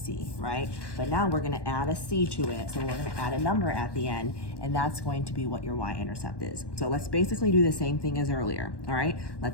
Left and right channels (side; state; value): right; late; 1.1 ms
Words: right? But now we're gonna add a c to it, so we're gonna add a number at the end, and that's going to be what your y-intercept is. So let's basically do the same thing as earlier, all right?